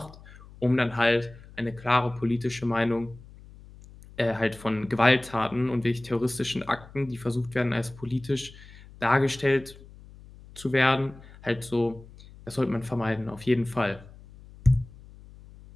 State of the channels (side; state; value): left; noise; hum, 20 dB below the sound